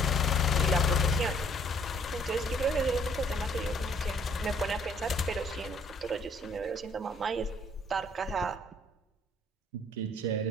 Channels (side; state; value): both; normal; correlation 0.62